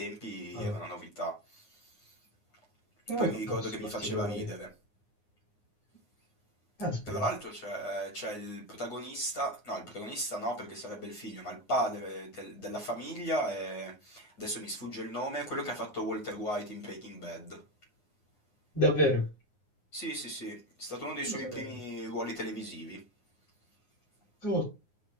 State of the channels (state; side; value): late; right; 9.6 ms